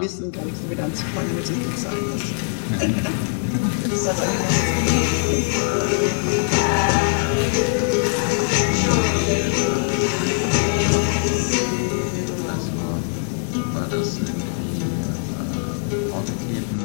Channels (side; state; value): right; silent; 59 dB below the other